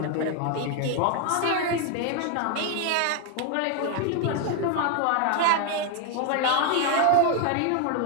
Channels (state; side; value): different; both; correlation 0.01